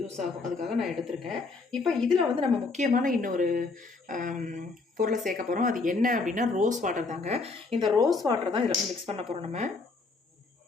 யூஸ் ஆகும். அதுக்காக நான் எடுத்திருக்கேன். இப்போ இதில் வந்து நம்ம முக்கியமான இன்னொரு பொருளை சேர்க்க போகிறோம். அது என்ன அப்படின்னா ரோஸ் வாட்டர் தாங்க. இந்த ரோஸ் வாட்டர் தான் இதில் வந்து மிக்ஸ் பண்ண போகிறோம். நம்ம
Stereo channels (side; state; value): right; quieter; 3.9 dB